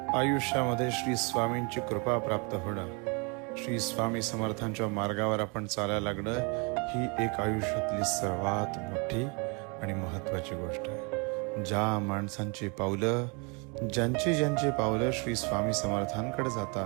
आयुष्यामध्ये श्री स्वामींची कृपा प्राप्त होणं, श्री स्वामी समर्थांच्या मार्गावर आपण चालायला लागणं ही एक आयुष्यातली सर्वात मोठी आणि महत्वाची गोष्ट आहे. ज्या माणसांची पावलं, ज्यांची पावलं श्री स्वामी समर्थांकडे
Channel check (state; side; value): quieter; left; 32.9 dB